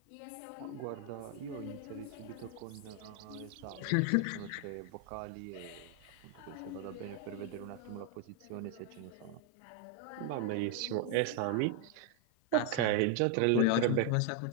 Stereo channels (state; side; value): different; both; correlation 0.00